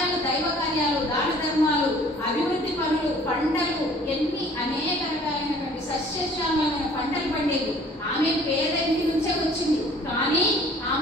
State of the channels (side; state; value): both; normal; correlation 0.53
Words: దైవ కార్యాలు, దాన ధర్మాలు, అభివృద్ధి పనులు, పంటలు, ఎన్ని అనేక రకాలైనటువంటి సస్యశ్యామలమైన పంటలు పండేవి. ఆమె పేద ఇంటి నుంచే వచ్చింది, కానీ